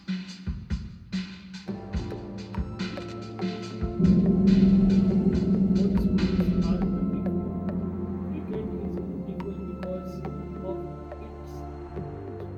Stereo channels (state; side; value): identical; both; correlation 1.00